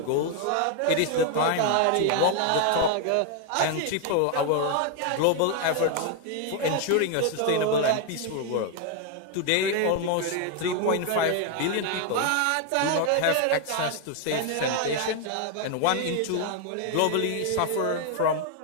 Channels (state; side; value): different; both; correlation 0.01